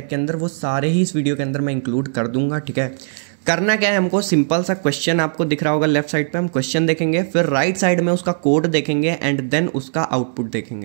के अंदर वो सारे ही इस वीडियो के अंदर मैं इंक्लूड कर दूंगा। ठीक है, करना क्या है, हमको सिंपल सा क्वेश्चन आपको दिख रहा होगा लेफ्ट साइड पे, हम क्वेश्चन देखेंगे, फिर राइट साइड में उसका कोड देखेंगे एंड देन उसका आउटपुट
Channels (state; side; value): silent; left; 66 dB below the other